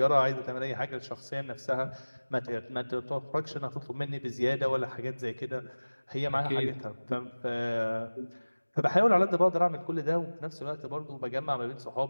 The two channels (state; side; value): inverted; both; correlation -1.00